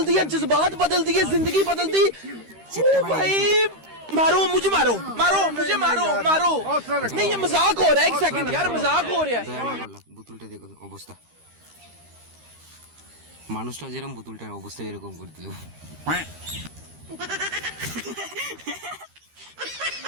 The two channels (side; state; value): left; late; 13 ms